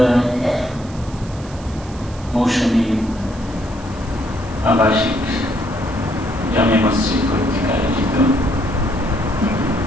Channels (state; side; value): noise; right; hiss, 21 dB below the sound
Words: মৌসুমী আবাসিক জামে মসজিদ কর্তৃক আয়োজিত